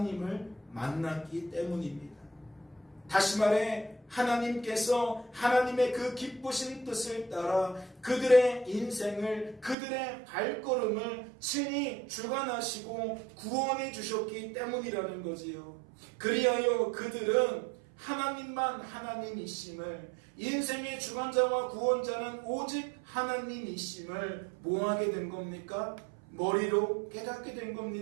만났기 때문입니다. 다시 말해 하나님께서 하나님의 그 기쁘신 뜻을 따라 그들의 인생을, 그들의 발걸음을 친히 주관하시고 구원해 주셨기 때문이라는 거지요. 그리하여 그들은 하나님만 하나님이심을, 인생의 주관자와 구원자는 오직 하나님이심을 뭐하게 된 겁니까? 머리로 깨닫게 된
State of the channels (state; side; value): drops out; left; at 9.8 s